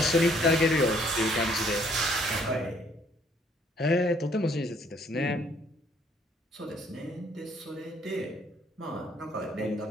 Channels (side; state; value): both; normal; correlation 0.64